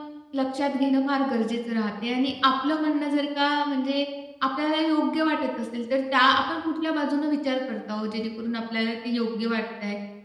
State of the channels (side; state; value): both; identical; correlation 1.00